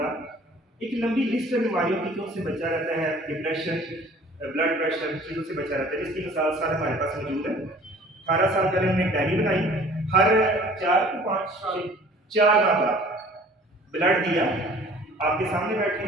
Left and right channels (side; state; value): both; normal; correlation 0.50